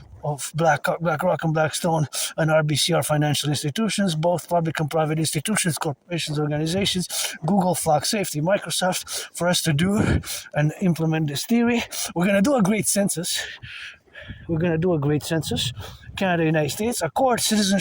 of BlackRock and Blackstone and RBC are financial institutions, both public and private institutions, corporations, organizations, Google, Flock Safety, Microsoft, for us to do and implement this theory. We're going to do a great census. Canada, United States, accord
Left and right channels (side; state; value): both; identical; correlation 1.00